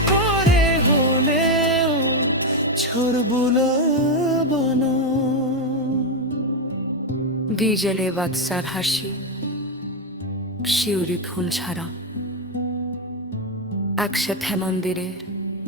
পরে হলেও ছড়বুলা বানা। ডিজেলে বাদশার হাসি, শিউরি ফুল ছাড়া, একসাথে মন্দিরের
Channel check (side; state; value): both; normal; correlation 0.06